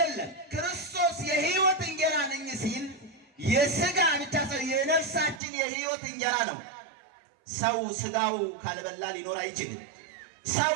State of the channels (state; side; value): drops out; left; at 5.4 s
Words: ክርስቶስ የሕይወት እንጀራ ነኝ ሲል የሥጋ ብቻ ሳይሆን የነፍሳችን የሕይወት እንጀራ ነው። ሰው ሥጋው ካልበላ ሊኖር አይችልም። ሰው